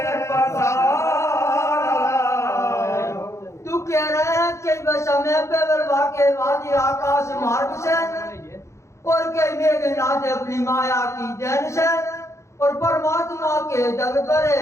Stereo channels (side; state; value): right; late; 0.14 ms